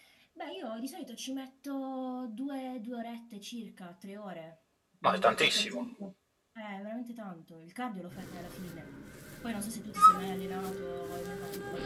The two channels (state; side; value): identical; both; correlation 1.00